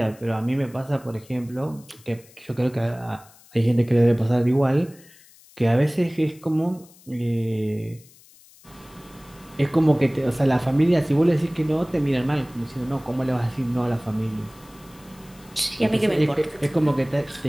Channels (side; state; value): left; noise; hiss, 25 dB below the sound